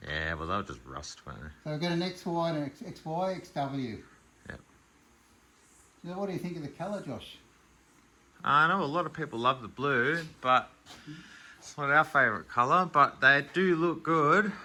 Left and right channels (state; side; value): identical; both; correlation 1.00